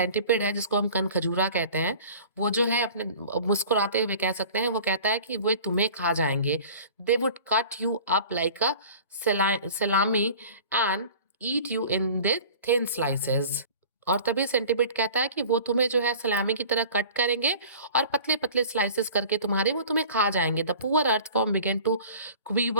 है जिसको हम कनखजूरा कहते हैं, वो जो है अपने मुस्कुराते हुए कह सकते हैं, वो कहता है कि वो तुम्हें खा जाएंगे। They would cut you up like a salami and eat you in the thin slices, और तभी सेंटिपेड कहता है कि वो तुम्हें जो है सलामी की तरह कट करेंगे और पतले पतले स्लाइसेस करके तुम्हारे वो तुम्हें खा जाएंगे। The poor earthworm began to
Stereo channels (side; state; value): both; inverted; correlation -0.43